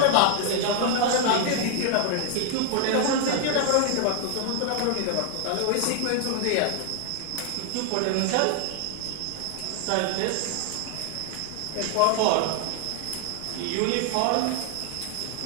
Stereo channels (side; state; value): both; different; correlation 0.00